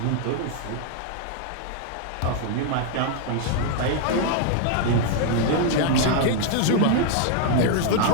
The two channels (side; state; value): both; different; correlation 0.00